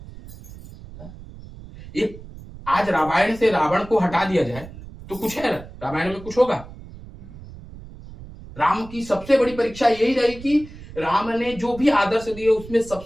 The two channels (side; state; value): right; noise; rumble, 16 dB below the sound